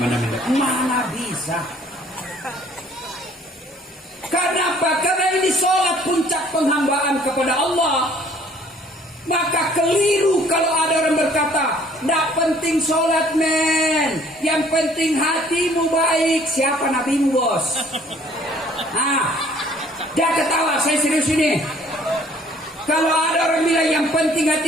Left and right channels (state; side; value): normal; both; correlation 0.58